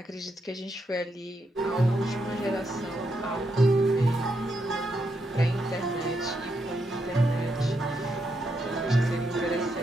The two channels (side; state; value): both; normal; correlation 0.81